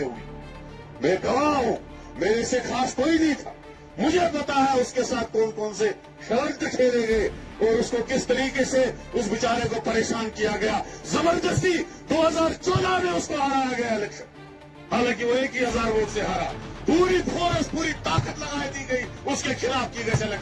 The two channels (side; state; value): both; identical; correlation 1.00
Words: हुई, मैं गवाह हूं, मेरे से खास कोई नहीं था। मुझे पता है उसके साथ कौन कौन से शर्त खेले गए और उसको किस तरीके से उस बेचारे को परेशान किया गया। जबरदस्ती 2014 में उसको हराया गया इलेक्शन, हालांकि वो 1,000 वोट से हारा। पूरी फोर्स, पूरी ताकत लगा दी गई उसके खिलाफ की गई